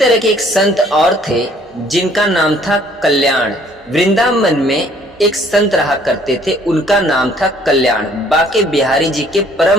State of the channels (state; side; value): normal; both; correlation 0.59